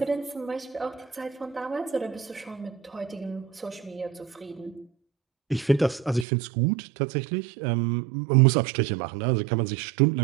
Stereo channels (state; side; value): drops out; left; at 6.2 s